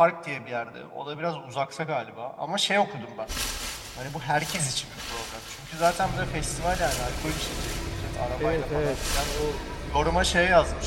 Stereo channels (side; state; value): both; identical; correlation 1.00